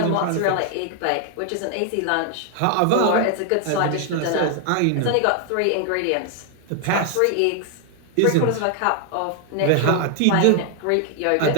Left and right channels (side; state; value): both; different; correlation 0.00